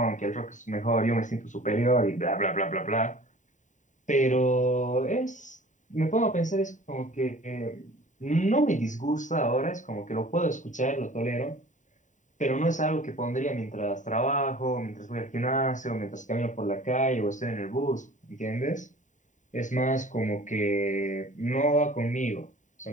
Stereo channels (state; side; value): late; right; 0.36 ms